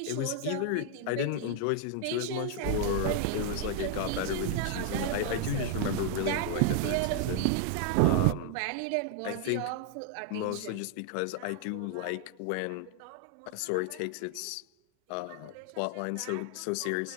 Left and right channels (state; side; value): different; both; correlation 0.00